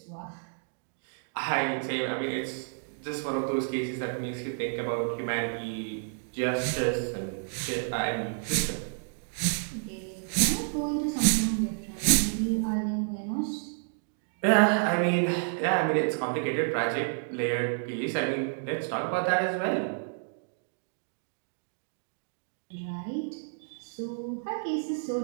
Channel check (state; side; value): silent; left; digital silence